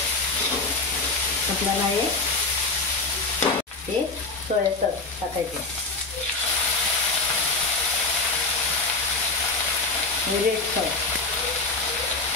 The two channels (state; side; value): quieter; right; 3.6 dB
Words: आपल्याला हे सोया सॉस टाकायचे. हे रेड सॉस